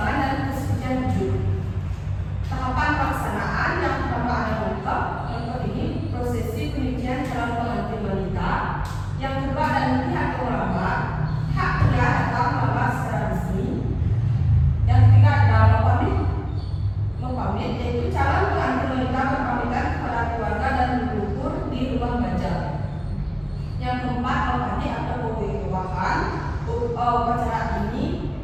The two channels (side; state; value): both; identical; correlation 1.00